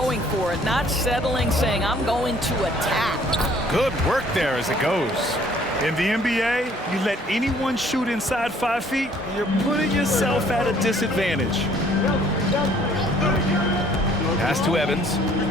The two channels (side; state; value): both; normal; correlation 0.59